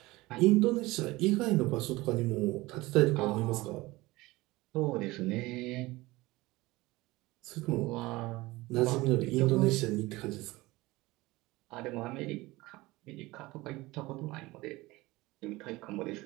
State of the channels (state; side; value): quieter; left; 20.4 dB